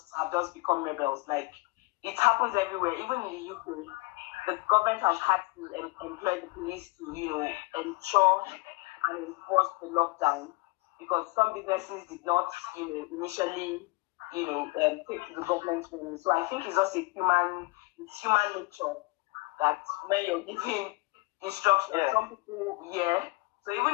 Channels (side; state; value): right; quieter; 24.4 dB